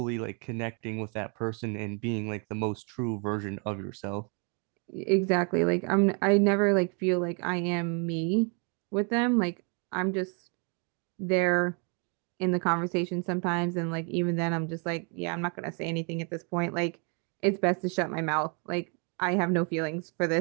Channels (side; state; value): left; quieter; 37.0 dB